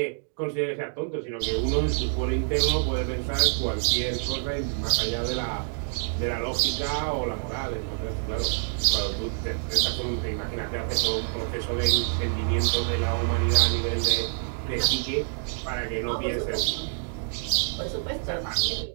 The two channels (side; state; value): left; silent; digital silence